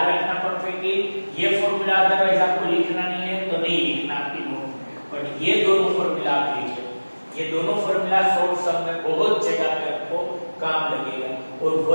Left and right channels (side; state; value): both; inverted; correlation -1.00